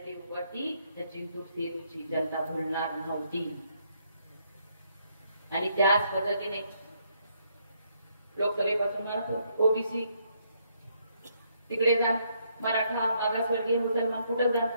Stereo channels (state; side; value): inverted; both; correlation -0.72